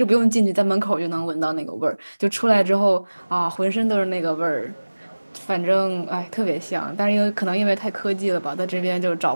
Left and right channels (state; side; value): inverted; both; correlation -1.00